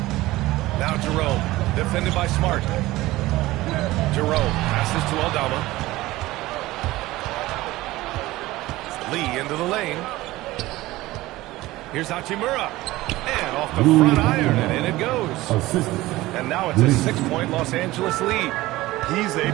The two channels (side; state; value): left; quieter; 18.1 dB